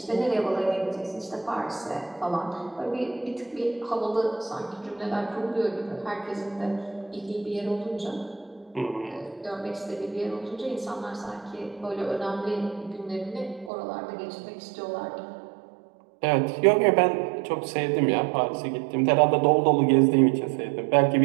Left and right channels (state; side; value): drops out; left; at 13.7 s